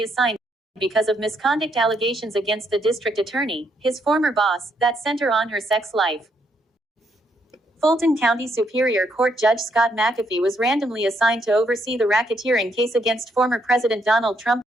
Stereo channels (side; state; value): both; normal; correlation 0.75